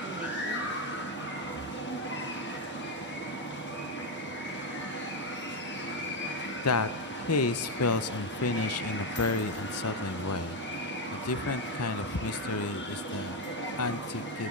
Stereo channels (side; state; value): both; normal; correlation 0.06